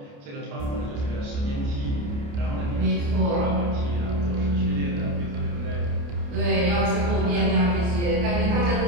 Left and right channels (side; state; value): left; late; 29 ms